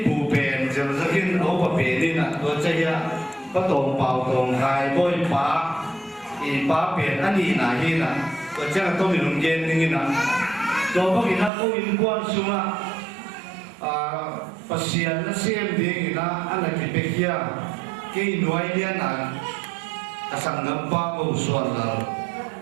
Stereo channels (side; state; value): left; drops out; at 11.5 s